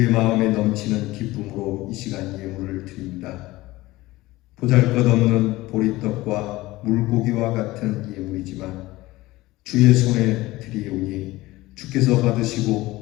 마음에 넘치는 기쁨으로 이 시간 예물을 드립니다. 보잘것없는 보리떡과 물고기와 같은 예물이지만 주의 손에 드리오니 주께서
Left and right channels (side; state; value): right; quieter; 18.8 dB